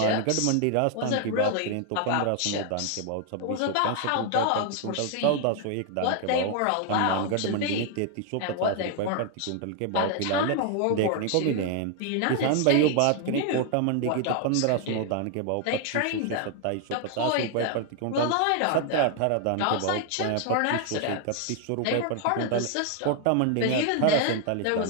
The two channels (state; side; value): different; both; correlation 0.00